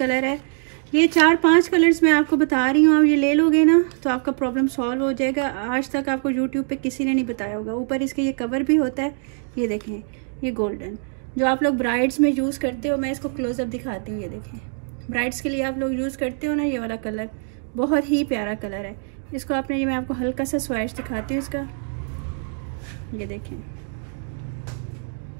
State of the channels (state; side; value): silent; left; 58 dB below the other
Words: है। ये 4-5 कलर्स मैं आपको बता रही हूँ, आप ये ले लोगे ना तो आपका प्रॉब्लम सॉल्व हो जाएगा। आज तक आपको यूट्यूब पे किसी ने नहीं बताया होगा। ऊपर इसके ये कवर भी होता है। ये देखें, ये गोल्डन जो आप लोग ब्राइड्स में यूज़ करते हो, मैं इसको क्लोज़अप दिखाती हूँ। ये देखें, ब्राइड्स के लिए आप लोग यूज़ करते हो ना, ये वाला कलर बहुत ही प्यारा कलर है। इसको आपने, ये मैं आपको हल्का सा स्वैच दिखाती हूँ इसका। ये देखें